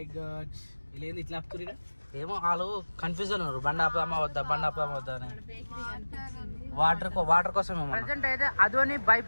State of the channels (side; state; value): both; inverted; correlation -1.00